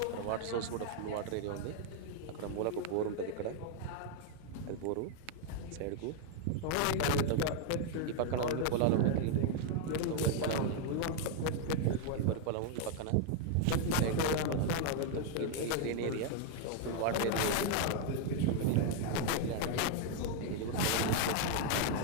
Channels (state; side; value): different; both; correlation 0.00